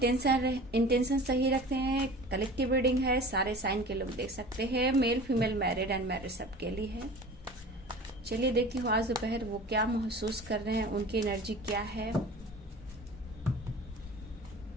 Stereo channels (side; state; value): both; normal; correlation 0.39